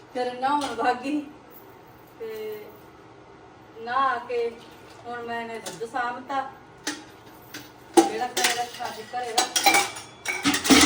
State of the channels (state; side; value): identical; both; correlation 1.00